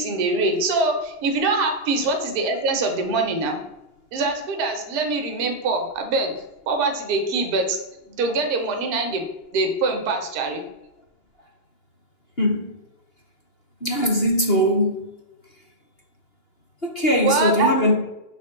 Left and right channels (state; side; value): late; right; 2.8 ms